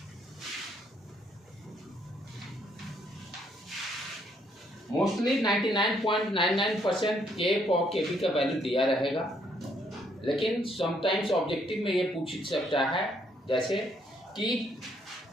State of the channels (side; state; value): both; normal; correlation 0.70